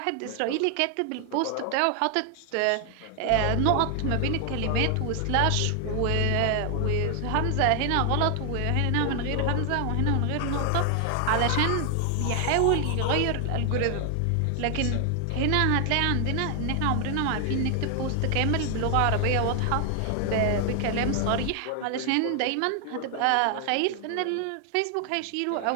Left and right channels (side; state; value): both; different; correlation 0.00